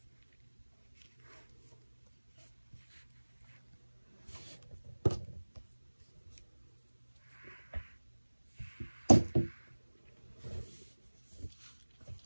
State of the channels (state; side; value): inverted; both; correlation -1.00